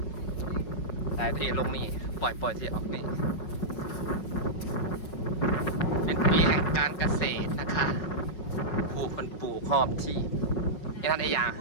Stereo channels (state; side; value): late; right; 5.4 ms